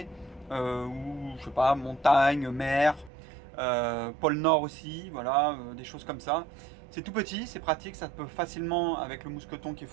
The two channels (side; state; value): left; drops out; at 3.1 s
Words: ou je sais pas, montagne, mer, pôle Nord aussi, voilà, des choses comme ça. C'est tout petit, c'est pratique, ça peut facilement, avec le mousqueton qui est